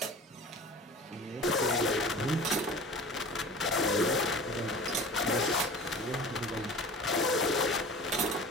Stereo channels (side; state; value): both; normal; correlation 0.39